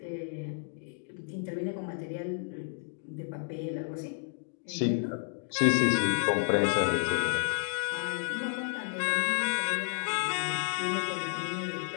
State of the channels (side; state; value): right; silent; digital silence